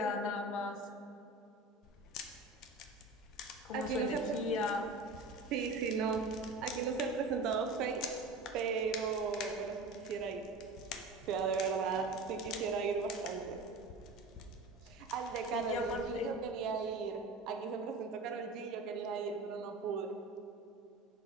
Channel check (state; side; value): quieter; left; 3.1 dB